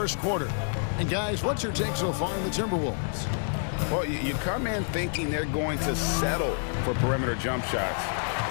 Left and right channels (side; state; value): right; silent; 59 dB below the other